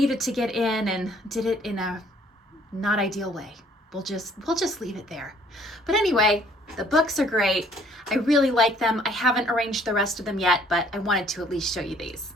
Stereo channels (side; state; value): both; normal; correlation 0.60